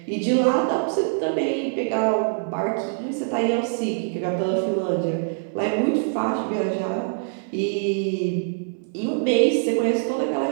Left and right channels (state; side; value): silent; left; 63 dB below the other